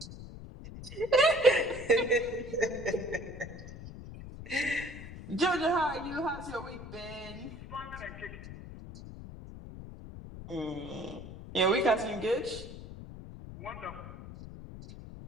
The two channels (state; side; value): noise; left; rumble, 12 dB below the sound